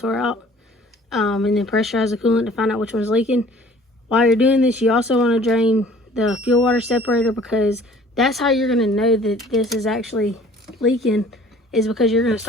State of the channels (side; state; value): both; normal; correlation 0.52